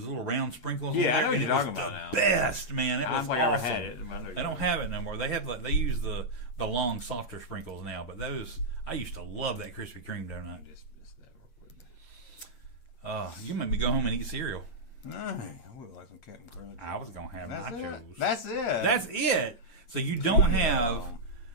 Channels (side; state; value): right; late; 8.6 ms